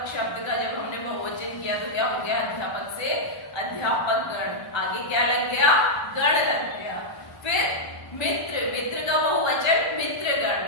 शब्द का जब हमने बहुवचन किया तो क्या हो गया, अध्यापक से अध्यापक गण, आगे क्या लग गया, गण लग गया। फिर मित्र, मित्र का बहुवचन मित्रगण,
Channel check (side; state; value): right; late; 1.3 ms